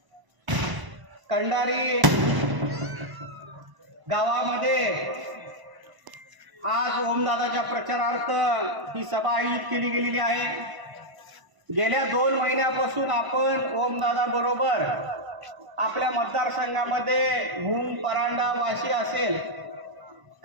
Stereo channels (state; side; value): late; left; 1.0 ms